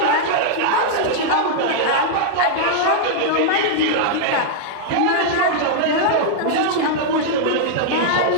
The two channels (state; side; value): different; both; correlation -0.01